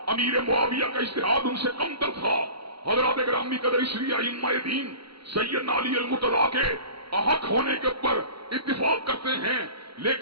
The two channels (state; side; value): late; left; 0.75 ms